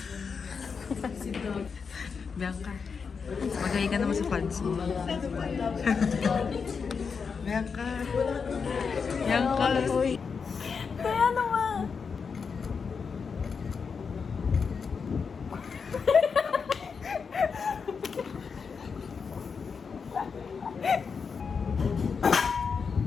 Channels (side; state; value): right; quieter; 5.7 dB